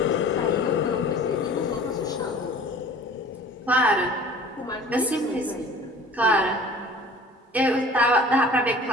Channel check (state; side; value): normal; both; correlation 0.45